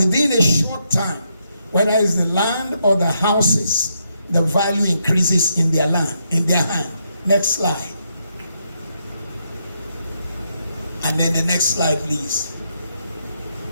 a short time, whether it's the land or the houses, the value increases in their land, in their hand. Next slide. And then the next slide, please.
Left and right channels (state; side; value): inverted; both; correlation -0.79